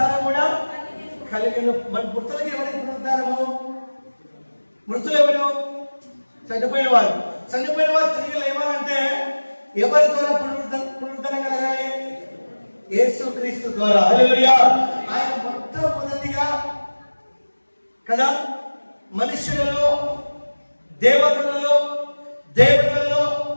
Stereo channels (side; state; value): both; inverted; correlation -1.00